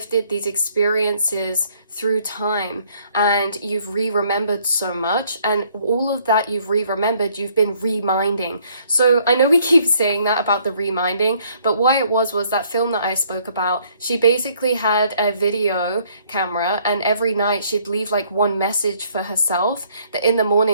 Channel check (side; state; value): both; inverted; correlation -0.64